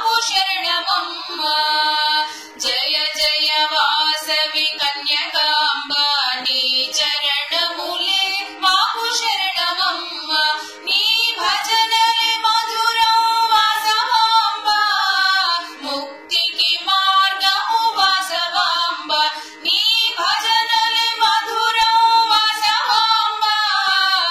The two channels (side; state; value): both; identical; correlation 1.00